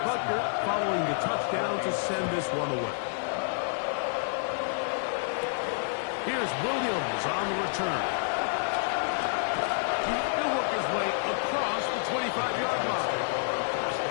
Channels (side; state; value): right; silent; digital silence